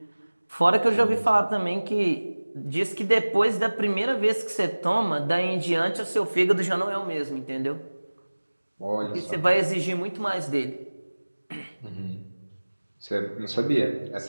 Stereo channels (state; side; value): inverted; both; correlation -1.00